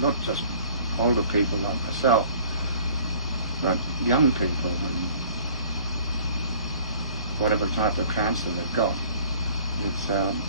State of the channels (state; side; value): inverted; both; correlation -0.52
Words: not just older people like myself, but young people and whatever type of cancer they've got. It's